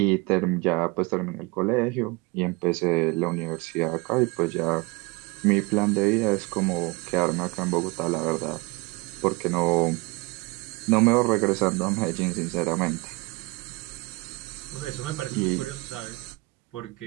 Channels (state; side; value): quieter; left; 25.4 dB